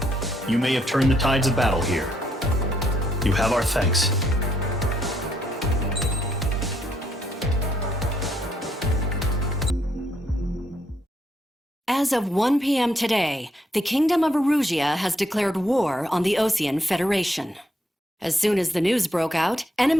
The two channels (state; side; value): normal; both; correlation 0.73